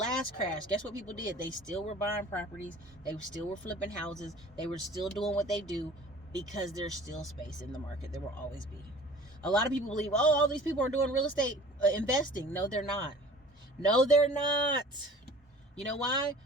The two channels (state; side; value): normal; both; correlation 0.46